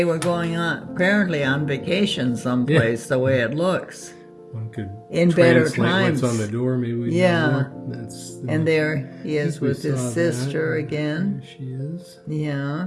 were going apparently on vacation someplace, the way it looks. One could in better times. What's on the door, maybe we know more. And there he is with his sister again. There she is.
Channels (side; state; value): both; identical; correlation 1.00